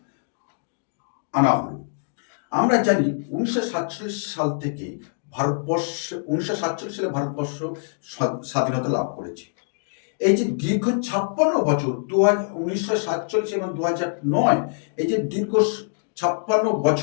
আনা হলো? আমরা জানি 1947 সাল থেকে ভারতবর্ষে 1947 সালে ভারতবর্ষ স্বাধীনতা লাভ করেছে। এই যে দীর্ঘ 56 বছর 1947 এবং 2009, এই যে দীর্ঘ 56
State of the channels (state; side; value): silent; right; digital silence